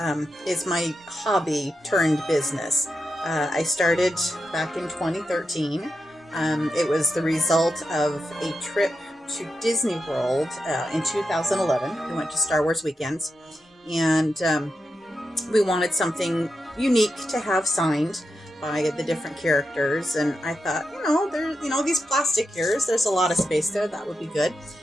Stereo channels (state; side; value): normal; both; correlation 0.88